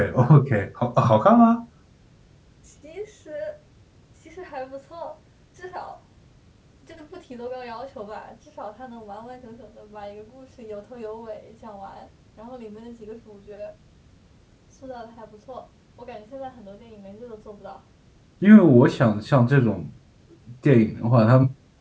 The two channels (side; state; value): both; identical; correlation 1.00